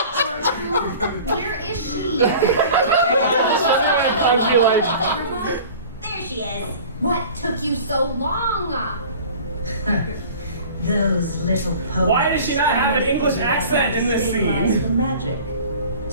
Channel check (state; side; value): inverted; both; correlation -0.43